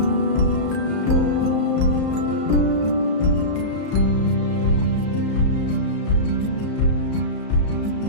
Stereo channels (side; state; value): right; late; 34 ms